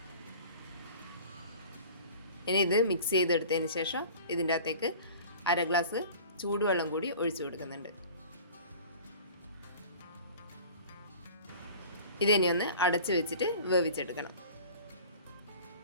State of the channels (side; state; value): both; inverted; correlation -0.42